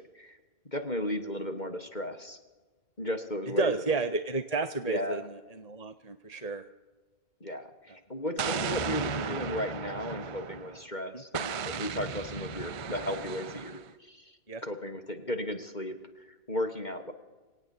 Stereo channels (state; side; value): late; right; 2.2 ms